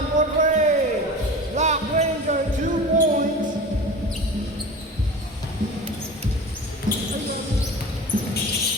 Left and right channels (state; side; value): normal; both; correlation 0.34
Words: for break. Black Ranger, 2 points.